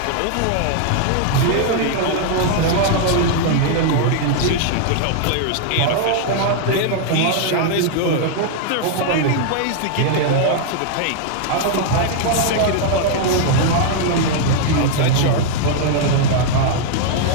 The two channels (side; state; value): both; different; correlation 0.00